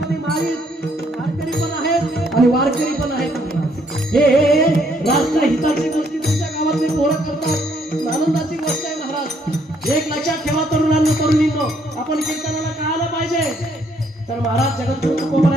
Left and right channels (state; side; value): normal; both; correlation 0.69